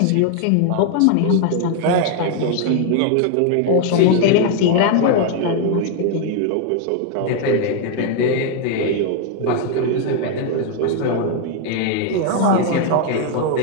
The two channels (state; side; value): different; both; correlation 0.00